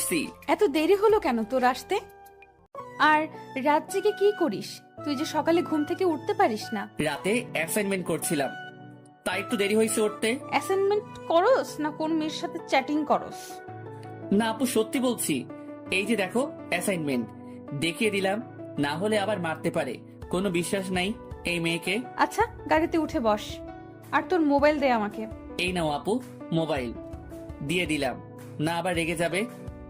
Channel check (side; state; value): both; identical; correlation 1.00